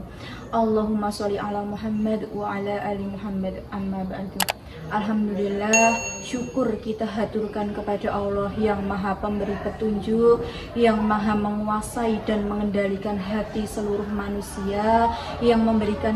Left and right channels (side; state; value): both; identical; correlation 1.00